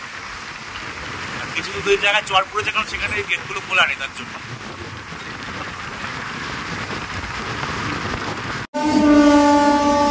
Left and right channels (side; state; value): both; identical; correlation 1.00